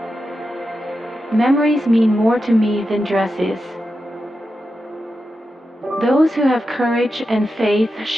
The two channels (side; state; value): both; normal; correlation 0.89